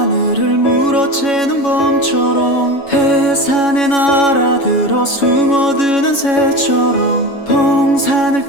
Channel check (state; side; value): late; right; 7.2 ms